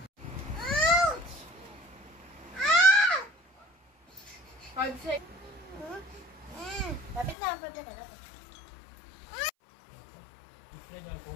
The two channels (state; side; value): drops out; right; at 7.4 s